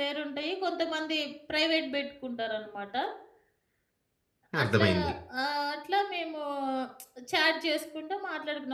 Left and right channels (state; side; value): identical; both; correlation 1.00